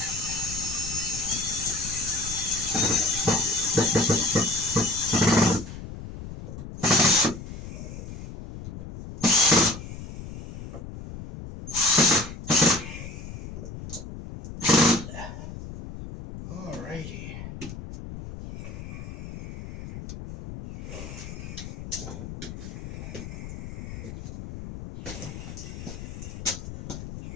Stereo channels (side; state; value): left; noise; rumble, 11 dB below the sound